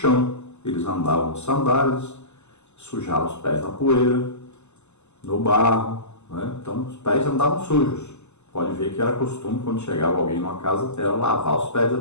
Eles andavam de sandálias, sujavam os pés na poeira, no barro, né? Então, os pés andavam sujos. Pode ver que era costume, quando chegava alguém numa casa, era lavar os pés da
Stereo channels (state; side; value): late; right; 0.83 ms